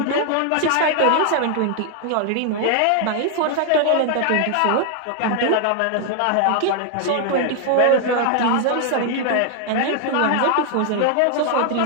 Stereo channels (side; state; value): both; different; correlation 0.00